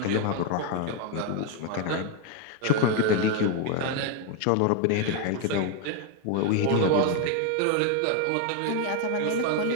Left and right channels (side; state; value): both; different; correlation 0.01